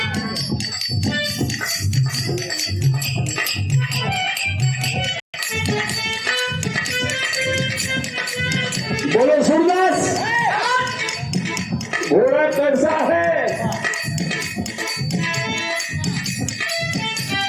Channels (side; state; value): both; identical; correlation 1.00